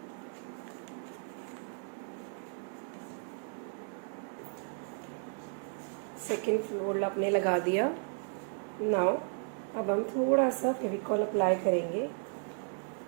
सेकेंड फोल्ड आपने लगा दिया. नाउ अब हम थोड़ा सा फेविकॉल अप्लाई करेंगे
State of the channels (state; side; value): silent; left; 55 dB below the other